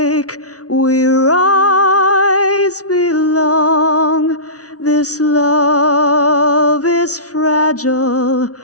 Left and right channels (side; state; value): right; late; 0.67 ms